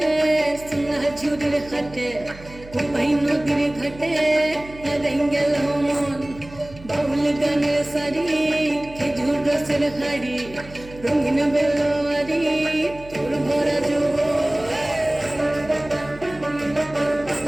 সোনা ঝুড়ির হাটে কোপাই নদীর ঘাটে গেল মন বাউল গানের শাড়ি খেজুর রসের হাড়ি রঙিন বেলোয়ারি তোর ভরা যৌবন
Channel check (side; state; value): right; noise; hum, 18 dB below the sound